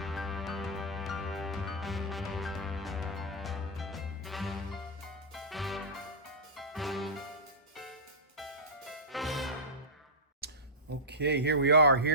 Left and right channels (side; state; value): both; normal; correlation -0.12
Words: Okay, here we are.